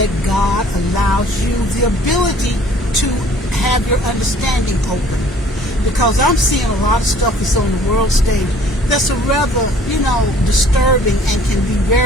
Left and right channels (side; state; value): both; normal; correlation 0.55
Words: God allows you the ability to have your understanding open. Because I'm seeing a lot of stuff that's on the world stage that's a rather, you know, disturbing and can be